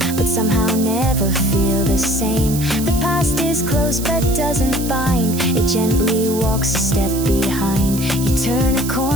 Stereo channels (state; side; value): noise; right; hiss, 9 dB below the sound